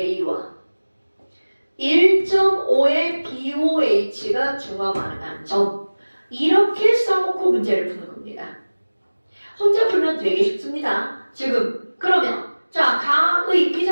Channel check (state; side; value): inverted; both; correlation -1.00